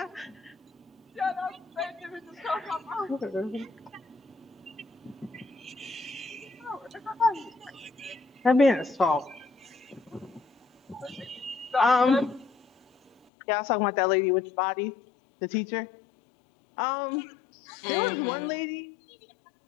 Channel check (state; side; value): drops out; right; at 13.1 s